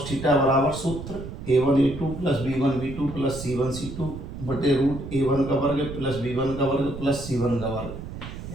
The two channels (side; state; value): right; noise; rumble, 10 dB below the sound